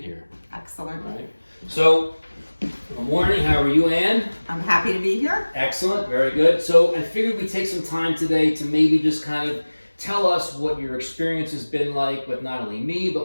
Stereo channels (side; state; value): both; inverted; correlation -1.00